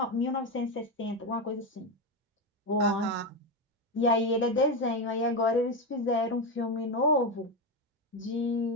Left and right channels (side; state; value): both; normal; correlation 0.12